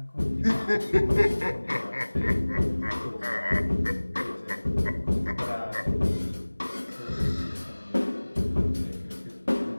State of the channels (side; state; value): both; inverted; correlation -1.00